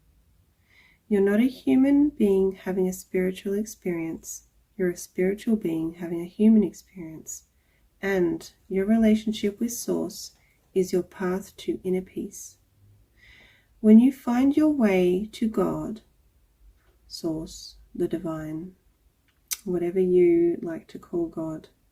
You're not a human being having a spiritual experience. You're a spiritual being having a human experience, and your relationship with Source is your path to inner peace. When you find your way to God, Source, the divine, whatever you like to call God,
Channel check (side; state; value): both; identical; correlation 1.00